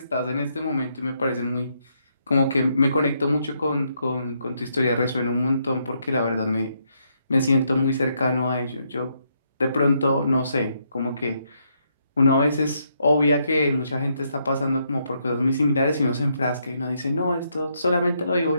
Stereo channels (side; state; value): both; inverted; correlation -0.76